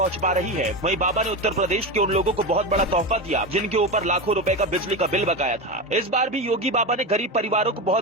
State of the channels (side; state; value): both; normal; correlation 0.19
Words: पा रही है, वहीं बाबा ने उत्तर प्रदेश के उन लोगों को बहुत बड़ा तोहफा दिया जिनके ऊपर लाखों रुपए का बिजली का बिल बकाया था। इस बार भी योगी बाबा ने गरीब परिवारों को